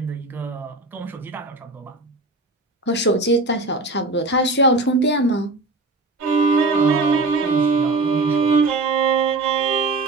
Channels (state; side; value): quieter; left; 3.2 dB